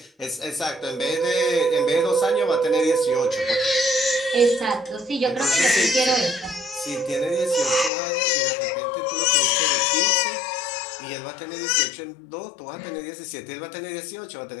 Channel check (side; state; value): right; drops out; at 7.9 s